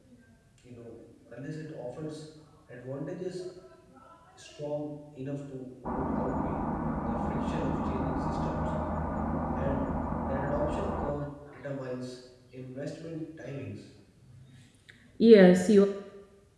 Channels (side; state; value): both; identical; correlation 1.00